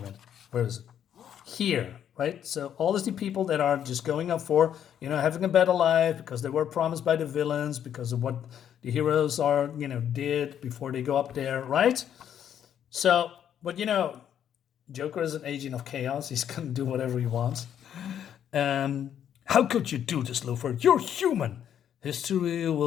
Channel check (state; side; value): quieter; right; 9.5 dB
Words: minute, where is it? Here, right? So all these people that are just going up for, having a better life because they were promised by the villains, because of what the heroes are, did before they go up there, right? So, but Joker is an agent of chaos. He's gonna do whatever he wants. How could you do this, Luthor? You're human. History